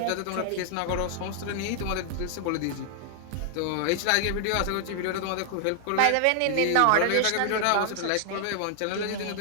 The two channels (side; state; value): both; different; correlation 0.00